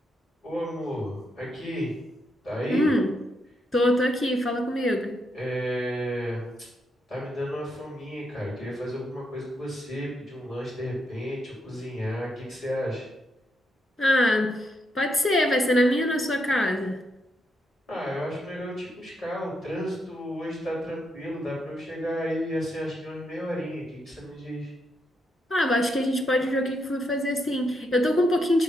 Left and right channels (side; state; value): both; normal; correlation 0.80